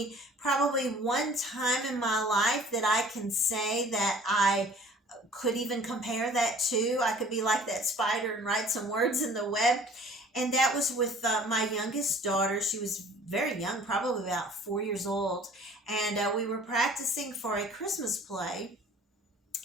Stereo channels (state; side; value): normal; both; correlation 0.50